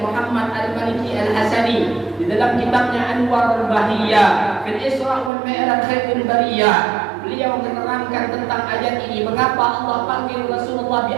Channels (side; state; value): left; drops out; at 5.3 s